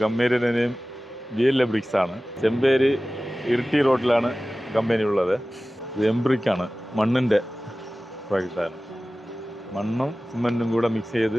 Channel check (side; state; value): both; normal; correlation 0.97